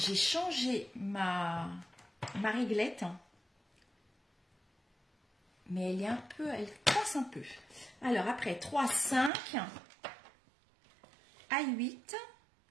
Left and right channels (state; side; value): drops out; left; at 9.3 s